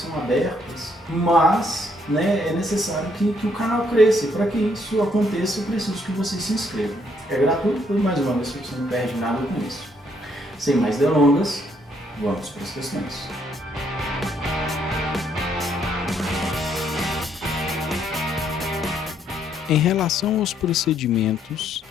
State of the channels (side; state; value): both; normal; correlation 0.70